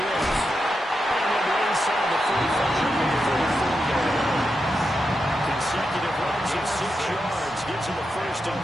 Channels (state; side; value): normal; both; correlation 0.87